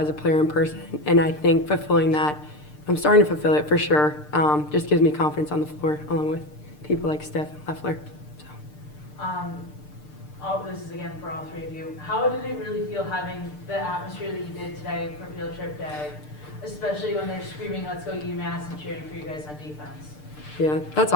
a player in person, and I think fulfilling that, I'm starting to fulfill it for sure, just gives me confidence on the floor, along with people like Steph and Loeffler. So. This is again for all 3 of you. How did it really feel having the atmosphere that you did today for Field Trip Day, especially when they're screaming, "Let's go UMass," and cheering for you guys on defense? Yeah, that's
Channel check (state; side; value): late; right; 6.7 ms